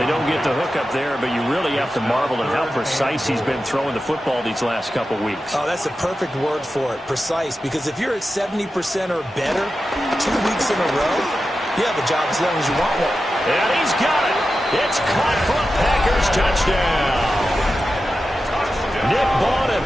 don't get the hook up there, but you really have to marvel at how precise he's been throwing the football these last couple weeks. Oh, that's the perfect word for it, precise, because if you're at 70% or better 2 weeks in a row, you have a job as long as you want one. And he's got it. It's caught for a Packers touchdown. Nick Bawden,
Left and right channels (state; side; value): normal; both; correlation 0.92